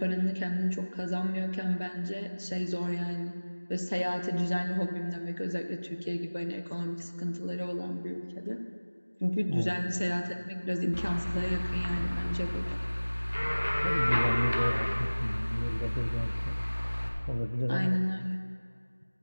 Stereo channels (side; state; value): both; inverted; correlation -1.00